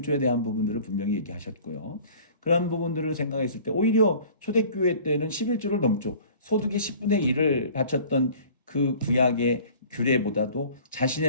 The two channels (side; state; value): both; inverted; correlation -0.48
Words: 대한 부분들을 분명히 얘기하셨고요. 그런 부분들을 생각했을 때 오히려 초대교회 때는 11조를 넘죠. 소득의 10분의 1을 바쳤던 그 구약의 규례보다도